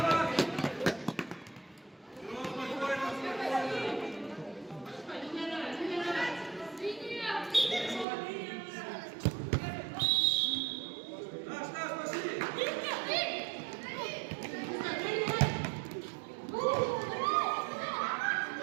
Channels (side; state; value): left; drops out; at 8.1 s